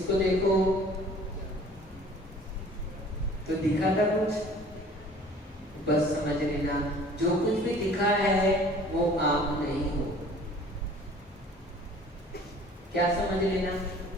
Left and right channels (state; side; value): normal; both; correlation 0.49